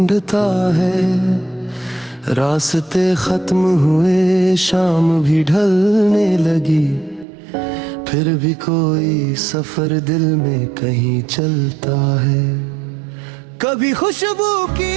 है। रास्ते खत्म हुए, शाम भी ढलने लगी, फिर भी कोई सफर दिल में कहीं चलता है। कभी खुशबू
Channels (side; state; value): left; drops out; at 7.2 s